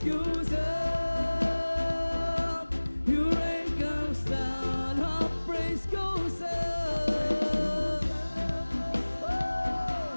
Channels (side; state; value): both; inverted; correlation -1.00